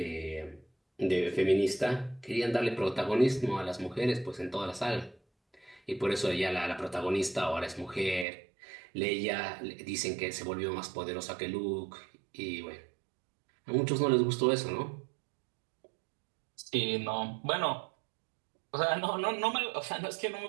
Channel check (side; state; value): left; drops out; at 8.2 s